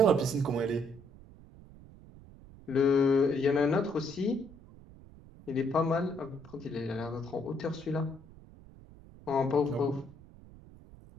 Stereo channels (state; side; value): noise; right; rumble, 21 dB below the sound